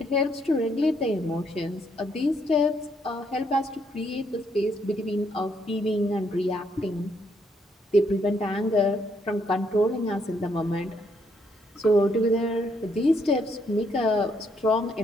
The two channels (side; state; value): both; normal; correlation 0.73